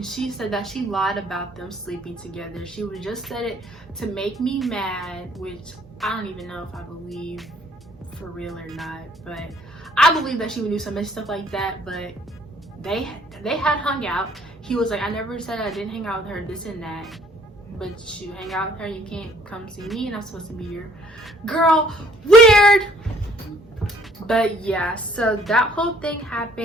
she said that she lied about them sleeping together. She would just said it to make me mad, which I don't even know if I believe for real or not, but I believe that she would do some stuff like that. But they had hung out. He was like, I never said I didn't hang out with her, this and that, but you hang out with her, you can't come see me and I'm supposed to be your girl. Weird. But yeah, so that whole thing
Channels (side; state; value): both; normal; correlation 0.59